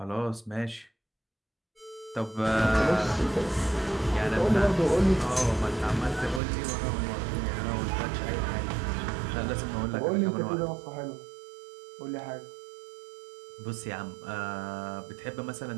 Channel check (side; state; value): left; drops out; at 6.4 s